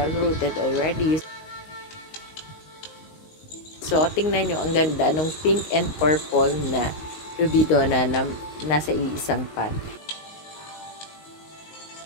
rooted already. So, tingnan nyo, ang ganda ng pink and purple na Rubidona na nasa iisang pot.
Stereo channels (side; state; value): right; late; 19 ms